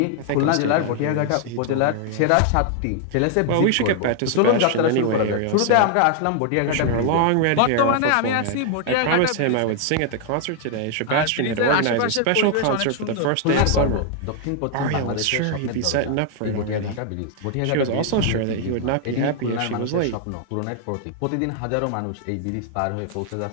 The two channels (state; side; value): different; both; correlation 0.00